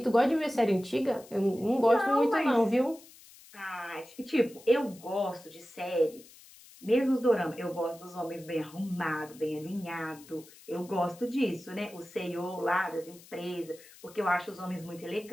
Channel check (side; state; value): left; noise; hiss, 22 dB below the sound